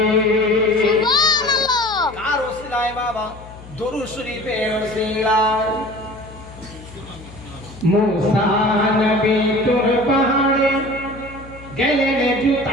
সুবহানাল্লাহ। কার ওসিলায় বাবা? দরুদ শরীফের ওসিলায়। মুসা নবী তোর পাহাড়ে গেলেন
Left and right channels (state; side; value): noise; left; hum, 18 dB below the sound